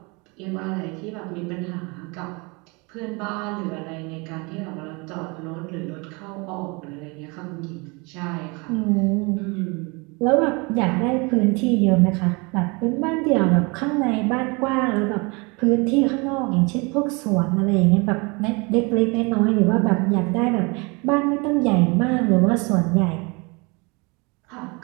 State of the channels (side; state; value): left; quieter; 28.6 dB